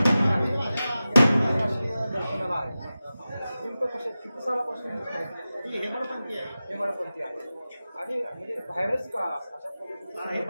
दर्शनाला आहे नेमकं कशा किती सालापासून हेमाडपंथी आहे आणि म्हणजे बाहेरच का अशा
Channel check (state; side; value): inverted; both; correlation -0.95